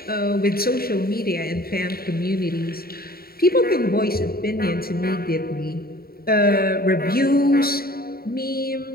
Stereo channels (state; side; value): late; right; 0.44 ms